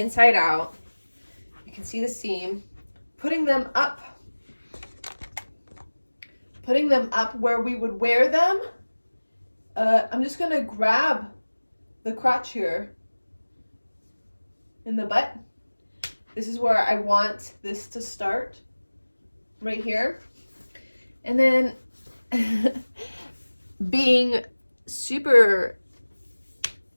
out. You can see the seam, putting them up where we would wear them. I'm just gonna grab the crotch here in the butt. This is where I want this to start, right here. And then being super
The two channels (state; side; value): inverted; both; correlation -1.00